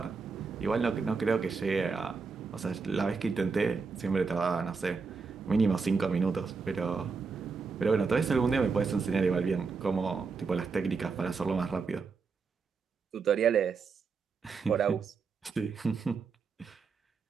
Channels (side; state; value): left; quieter; 4.9 dB